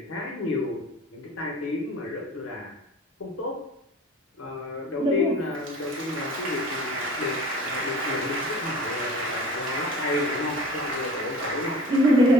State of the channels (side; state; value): both; normal; correlation 0.42